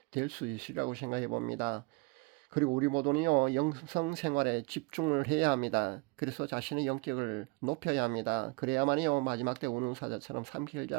될 수 있으리라고 생각해 봅니다. 그리고 우리 모두는요, 영성 생활에 집중을 해야 합니다. 그래서 자신의 영격을 높여야 합니다. 그래야만이요, 마지막 때 운운사자처럼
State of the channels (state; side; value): quieter; left; 28.3 dB